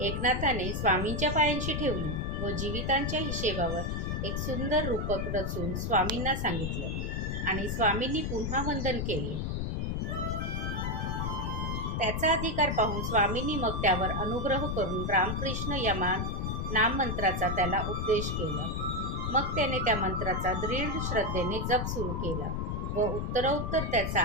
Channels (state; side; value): noise; left; rumble, 1 dB below the sound